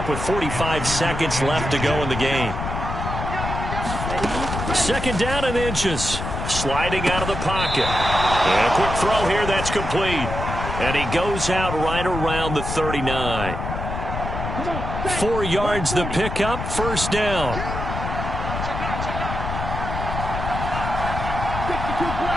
with 45 seconds left to go in the game. 2nd down and inches. Sliding out of the pocket. And a quick throw here that's complete. And he goes out right around the 39. 4 yards the pickup, 1st down.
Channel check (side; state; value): left; noise; rumble, 5 dB below the sound